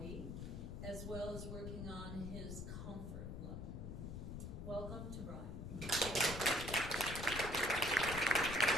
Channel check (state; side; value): noise; left; rumble, 6 dB below the sound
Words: as well as working on his comfort level. Welcome to Brian.